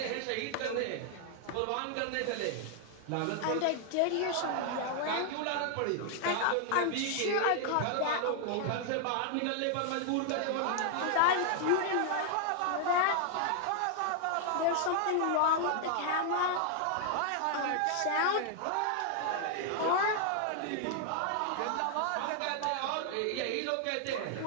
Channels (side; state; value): both; different; correlation 0.00